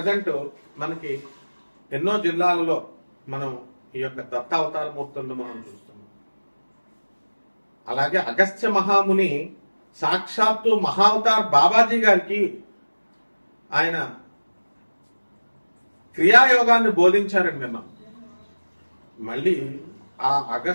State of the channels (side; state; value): both; inverted; correlation -1.00